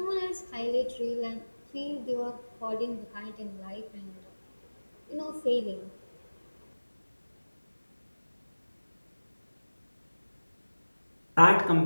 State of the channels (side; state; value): both; inverted; correlation -1.00